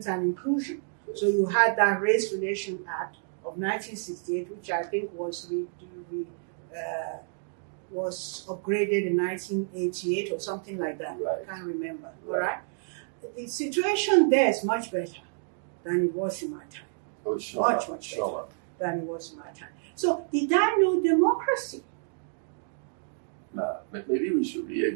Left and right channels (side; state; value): left; silent; digital silence